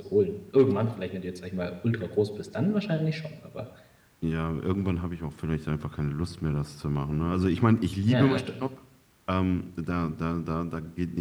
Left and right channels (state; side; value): identical; both; correlation 1.00